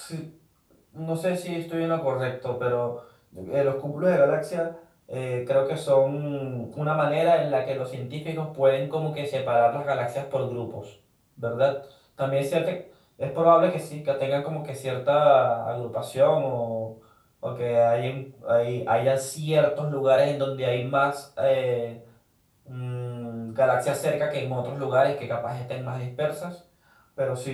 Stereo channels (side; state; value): both; identical; correlation 1.00